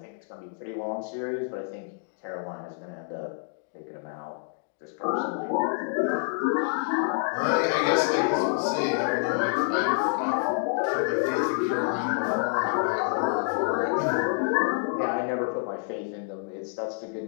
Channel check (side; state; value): right; silent; 60 dB below the other